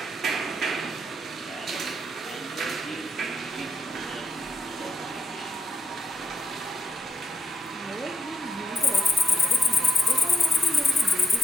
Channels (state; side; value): normal; both; correlation 0.85